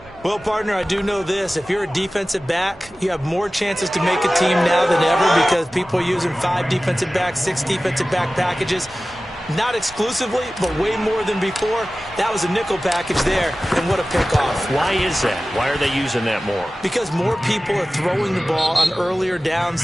Well, partner, I do know this. If you're a defensive back, you have more chances to make a team now than ever, because people are using 5 defensive backs, 6 defensive back packages. Not exclusively, but way more than before. That was a nickel package there, and what a pickoff. Why is that? Why are they using that more? Because more people are throwing the ball on earlier downs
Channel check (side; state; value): both; normal; correlation 0.96